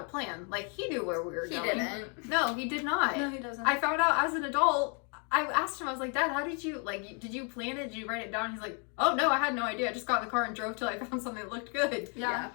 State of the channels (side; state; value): right; quieter; 37.5 dB